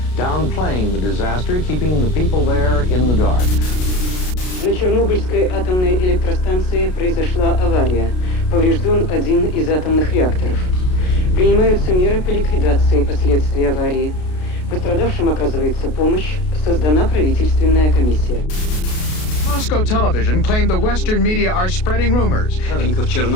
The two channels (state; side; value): late; right; 33 ms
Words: downplaying the disaster, keeping the people there in the dark. На Чернобыльской атомной электростанции произошла авария. Поврежден один из атомных реакторов. Принимаются меры по ликвидации последствий аварии. Пострадавшим оказывается помощь. Создана правительственная комиссия. Moscow television claimed the Western media are spreading rumors.